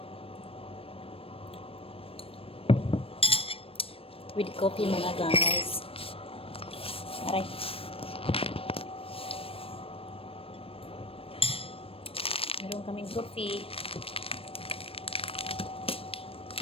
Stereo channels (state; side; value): late; right; 0.28 ms